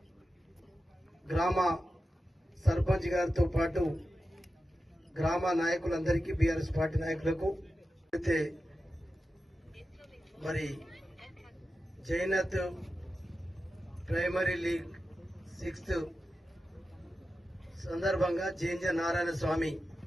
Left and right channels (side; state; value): both; normal; correlation 0.92